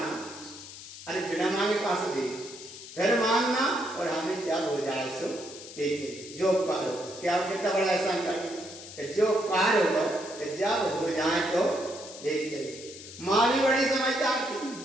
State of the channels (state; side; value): noise; left; hiss, 14 dB below the sound